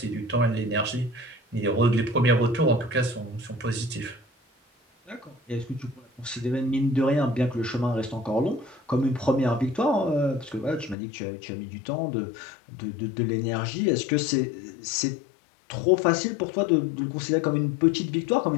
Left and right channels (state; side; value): drops out; right; at 11.0 s